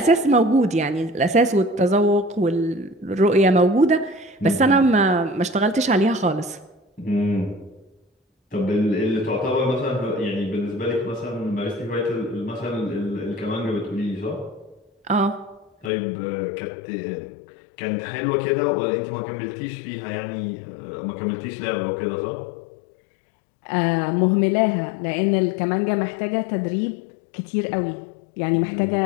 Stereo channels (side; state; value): right; drops out; at 15.9 s